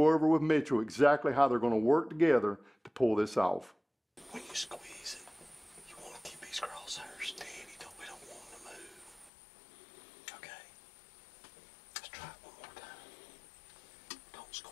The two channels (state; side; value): drops out; right; at 9.3 s